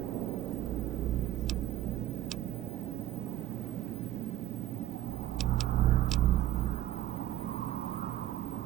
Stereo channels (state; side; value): quieter; left; 13.5 dB